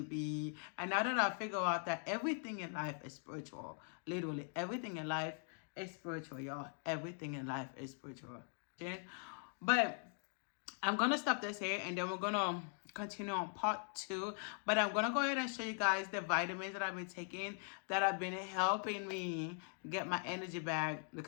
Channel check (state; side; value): silent; right; 50 dB below the other